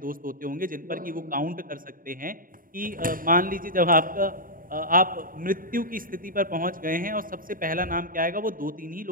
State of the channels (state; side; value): late; left; 0.41 ms